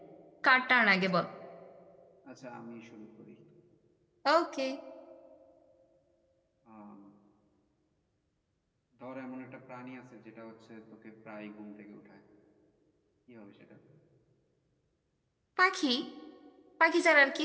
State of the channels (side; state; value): both; identical; correlation 1.00